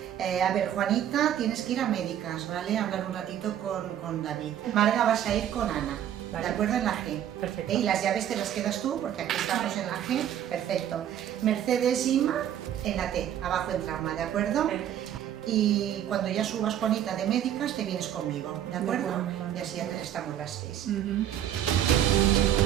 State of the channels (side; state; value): left; quieter; 10.7 dB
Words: A ver, Juanita, tienes que ir a médicas, ¿vale? Hablar un ratito con David. Marga, vas a ir con Ana, Vale. ¿de acuerdo? En la G. Perfecto. Y las llaves te las quedas tú, porque aquí estamos en la G. Perfecto. Mercedes, Inma, en la T, abajo en trauma, ¿de acuerdo? Y cuando ya subas, Juanita, de médicas, te vienes conmigo, ¿de acuerdo? Vale. Y así ya estamos las 6.